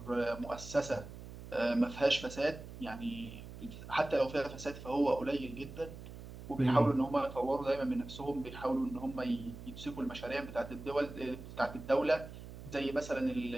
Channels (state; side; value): noise; right; hum, 13 dB below the sound